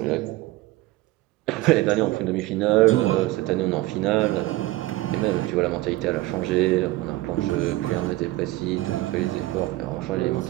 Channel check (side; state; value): left; quieter; 18.3 dB